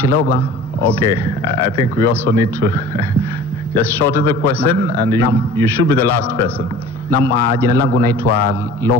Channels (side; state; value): both; normal; correlation 0.43